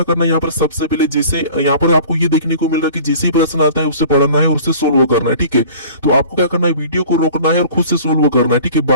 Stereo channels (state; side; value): inverted; both; correlation -0.45